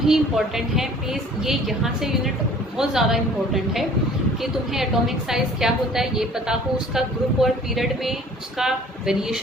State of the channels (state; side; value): normal; both; correlation 0.51